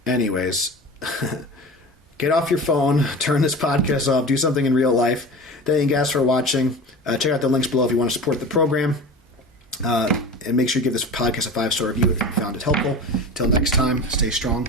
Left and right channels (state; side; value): normal; both; correlation 0.33